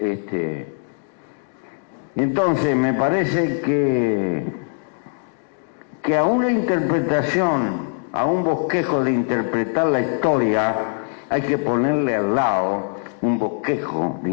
Entonces me parece que a una interpretación, a un bosquejo de interpretar la historia, hay que ponerle al lado un bosquejo de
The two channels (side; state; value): right; silent; digital silence